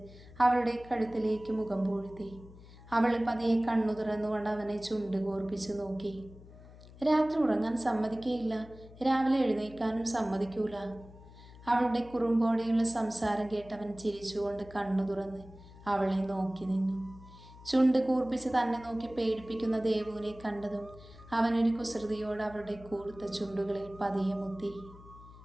അവളുടെ കഴുത്തിലേക്ക് മുഖം പൂഴ്ത്തി. അവൾ പതിയെ കണ്ണു തുറന്നുകൊണ്ട് അവനെ ചുണ്ട് കോർപ്പിച്ച് നോക്കി. രാത്രി ഉറങ്ങാൻ സമ്മതിക്കുകയില്ല, രാവിലെ എഴുന്നേൽക്കാനും സമ്മതിക്കൂല. അവളുടെ കുറുമ്പോടെയുള്ള സംസാരം കേട്ടവൻ ചിരിച്ചുകൊണ്ട് കണ്ണു തുറന്ന് അവളെ നോക്കി നിന്നു. ചുണ്ട് കൂർപ്പിച്ച് തന്നെ നോക്കി പേടിപ്പിക്കുന്ന ദേവുവിനെ കണ്ടതും അവനൊരു കുസൃതിയോട് അവളുടെ കൂർത്ത ചുണ്ടുകളിൽ പതിയെ മുത്തി.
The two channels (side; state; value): left; noise; hum, 19 dB below the sound